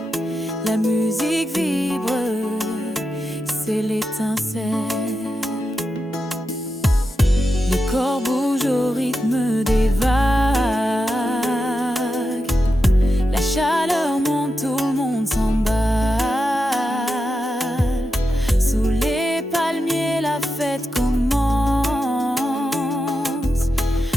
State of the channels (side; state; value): both; normal; correlation 0.89